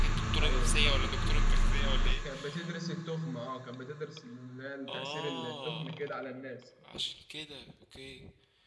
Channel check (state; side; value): identical; both; correlation 1.00